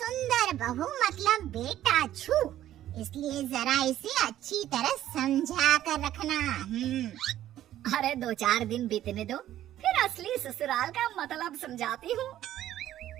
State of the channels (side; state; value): left; quieter; 12.7 dB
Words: बहू मतलब बेटा छू, इसलिए जरा इसे अच्छी तरह समझा कर रखना। अरे 2-4 दिन बीतने दो, फिर असली ससुराल का मतलब समझाती हूँ।